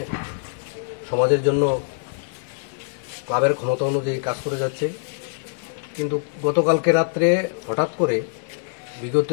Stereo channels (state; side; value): silent; right; 62 dB below the other